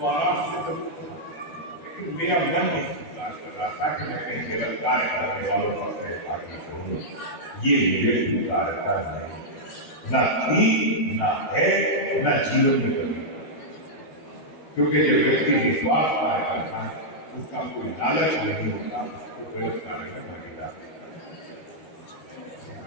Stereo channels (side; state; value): right; late; 13 ms